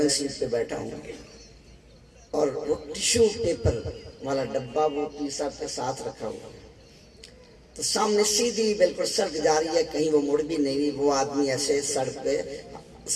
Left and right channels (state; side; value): identical; both; correlation 1.00